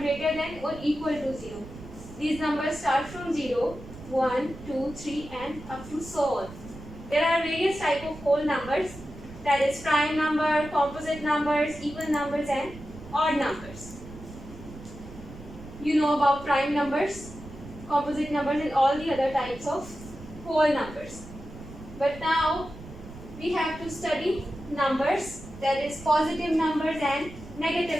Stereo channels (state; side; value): noise; right; rumble, 15 dB below the sound